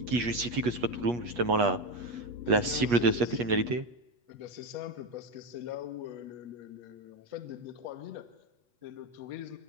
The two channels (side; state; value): left; late; 8.3 ms